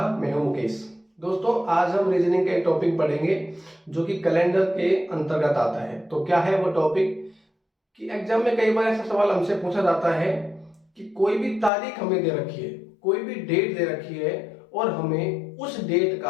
मैं हूं मुकेश। दोस्तों, आज हम रीजनिंग का एक टॉपिक पढ़ेंगे जो कि कैलेंडर के अंतर्गत आता है। तो क्या है वो टॉपिक कि एग्जाम में कई बार ऐसा सवाल हमसे पूछा जाता है कि कोई भी तारीख हमें दे रखी है, कोई भी डेट दे रखी है और हमें उस डेट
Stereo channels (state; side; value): drops out; right; at 11.7 s